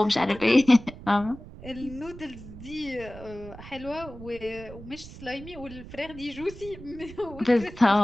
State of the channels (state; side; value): noise; right; rumble, 15 dB below the sound